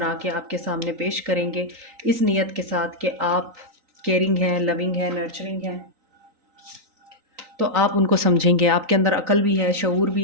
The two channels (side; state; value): left; late; 3.9 ms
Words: के आपके सामने पेश करेंगे, इस नीयत के साथ कि आप केयरिंग हैं, लविंग हैं, नर्चरिंग हैं। तो आप उनको समझेंगे, आपके अंदर अकल भी है, शऊर